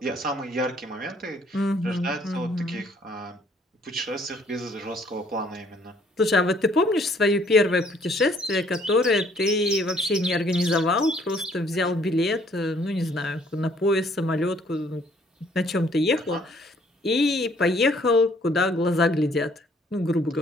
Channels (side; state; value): both; normal; correlation 0.62